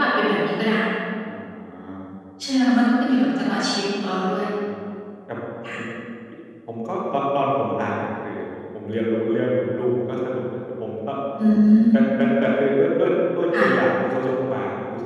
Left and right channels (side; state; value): both; identical; correlation 1.00